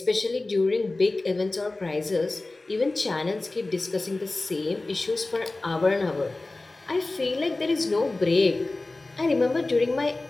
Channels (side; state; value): right; quieter; 3.1 dB